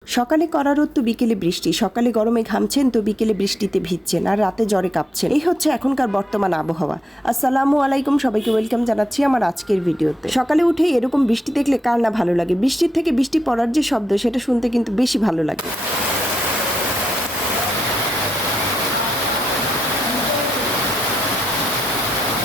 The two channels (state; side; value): normal; both; correlation 0.84